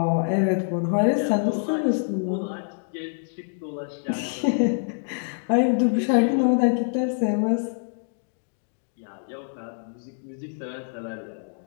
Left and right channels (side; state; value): right; silent; digital silence